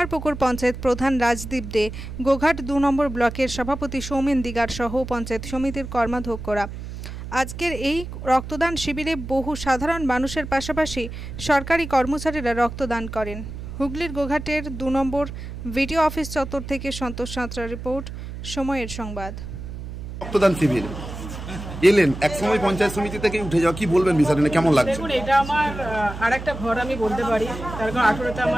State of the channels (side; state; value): right; noise; hum, 9 dB below the sound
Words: পঞ্চায়েত প্রধান রাজদীপ দে, গোঘাট ২ নম্বর ব্লকের সভাপতি সৌমেন দিগার সহ পঞ্চায়েত সমিতির কর্মাধ্যক্ষরা। আজকের এই রক্তদান শিবিরে বহু সাধারণ মানুষের পাশাপাশি সরকারি কর্মচারীরা রক্তদান করেন। হুগলির গোঘাটের ২ নম্বর ভিডিও অফিস চত্বর থেকে সন্তোষ সাঁতরা রিপোর্ট, সময়ের সংবাদ। রক্তদান শিবির এলেন, একসময় পঞ্চায়েত সমিতি থেকে উঠে যাওয়া, কি বলবেন বিষয়টা, কেমন লাগছে? দেখুন, এটা আমার আরেকটা ঘর আমি বলতে পারি। তার কারণ 18তে